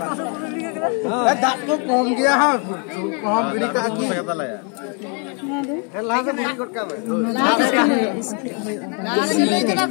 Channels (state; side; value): quieter; right; 37.5 dB